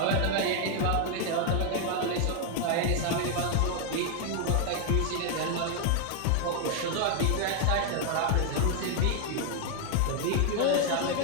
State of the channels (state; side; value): different; both; correlation 0.00